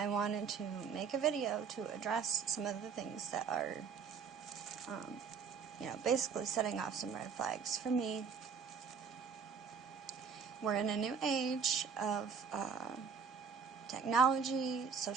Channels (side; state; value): left; quieter; 6.1 dB